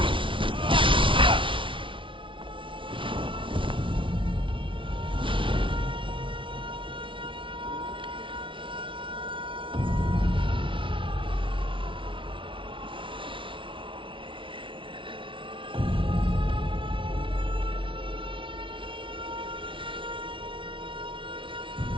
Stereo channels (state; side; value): late; left; 0.25 ms